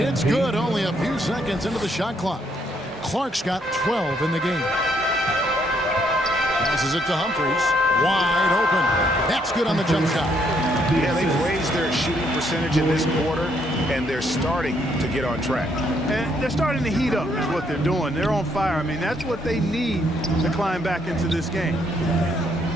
good, only a few seconds into the shot clock. Clark's got 12 in the game. Passes it to Humphries. Wide open. That's good on the jump shot. Yeah, they've raised their shooting percentage in this quarter, and they're starting to get on track. And they're starting to heat up is what they're doing. They're on fire. I mean, that's what they need to climb back into this game.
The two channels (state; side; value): normal; both; correlation 0.71